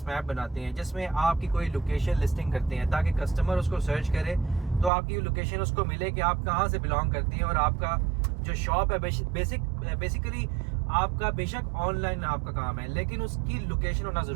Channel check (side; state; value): left; drops out; at 4.9 s